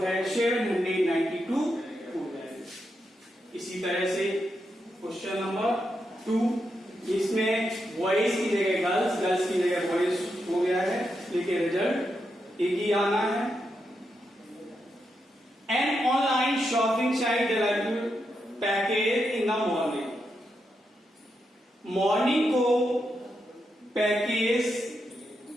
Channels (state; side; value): normal; both; correlation 0.84